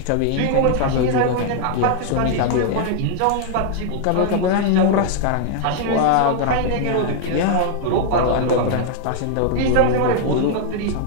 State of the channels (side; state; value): both; different; correlation 0.00